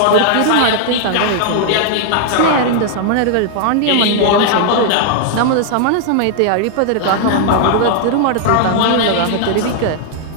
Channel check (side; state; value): both; different; correlation 0.00